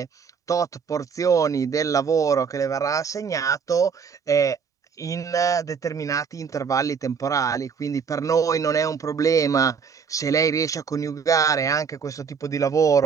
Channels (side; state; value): left; quieter; 6.2 dB